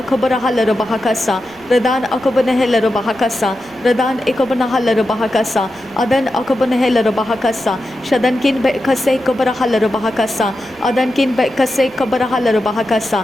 halara baha kasa. Redan akabana halara baha kasa. Redan ikabana halara baha kasa. Adan akabana halara baha kasa. Shadankin be kase kabara halara baha kasa. Adankin be kase kabara halara baha kasa.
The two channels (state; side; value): noise; left; rumble, 29 dB below the sound